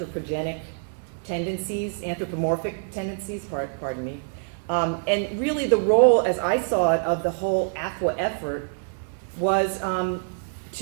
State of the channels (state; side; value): silent; left; digital silence